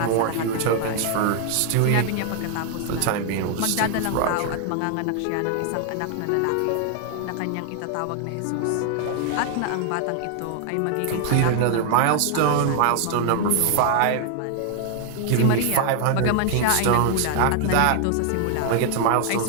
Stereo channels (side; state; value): both; different; correlation 0.00